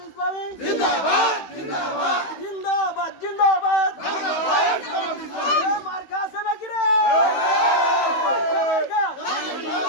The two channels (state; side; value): late; right; 16 ms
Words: ইসলামী জিন্দাবাদ জিন্দাবাদ জিন্দাবাদ জিন্দাবাদ বাংলাদেশ জামাত ইসলামী মার্কা আছে নাকি রে মার্কা